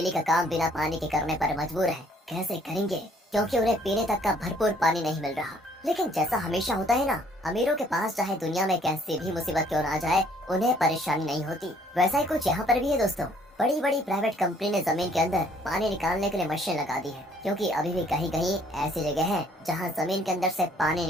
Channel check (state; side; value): normal; both; correlation 0.62